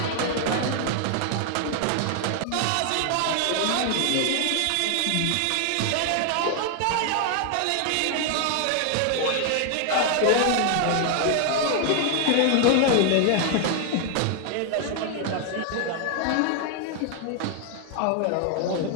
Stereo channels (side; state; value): both; different; correlation 0.00